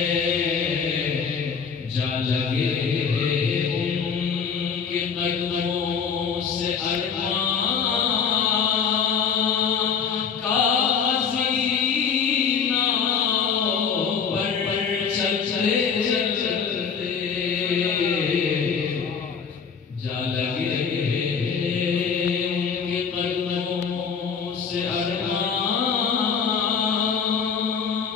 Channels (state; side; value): quieter; right; 6.4 dB